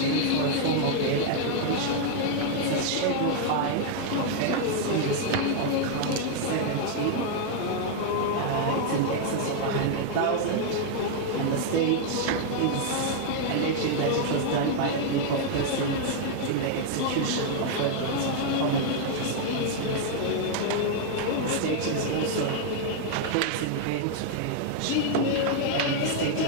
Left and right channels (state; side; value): different; both; correlation 0.00